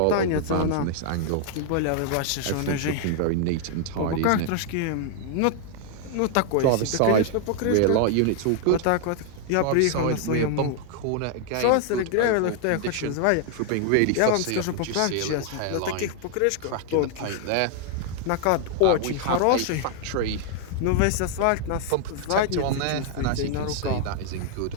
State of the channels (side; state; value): both; different; correlation 0.00